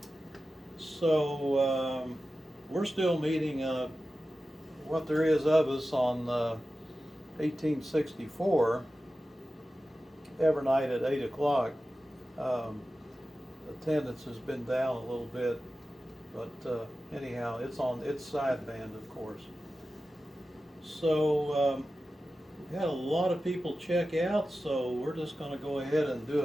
So we're still meeting what there is of us on 1864 every night at 8 o'clock. Attendance has been down a little bit, but anyhow, it's on its sideband, of course. So we had a lot of people check out, so we're just going to go ahead and do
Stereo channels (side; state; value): both; normal; correlation 0.94